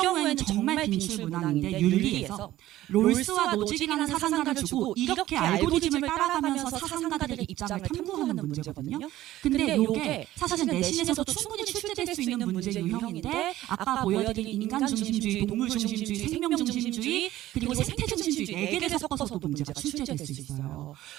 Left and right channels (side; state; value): left; quieter; 14.9 dB